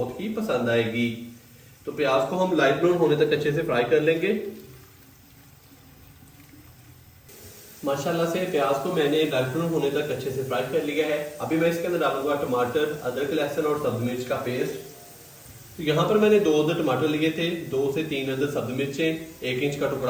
ही पसंद आएगी। तो प्याज को हम लाइट ब्राउन होने तक अच्छे से फ्राई कर लेंगे। माशाल्लाह से प्याज को मैंने लाइट ब्राउन होने तक अच्छे से फ्राई कर लिया है। अभी मैं इसके अंदर डालूंगा टमाटर, अदरक, लहसुन और सब्ज मिर्च का पेस्ट। तो यहाँ पर मैंने 2 अदद टमाटर लिए थे, 2 से 3 अदद सब्ज मिर्चें, 1 इंच का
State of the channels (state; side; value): identical; both; correlation 1.00